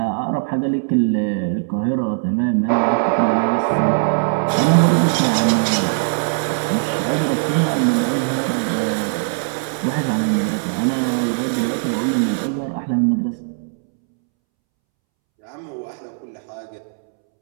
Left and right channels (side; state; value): left; silent; 66 dB below the other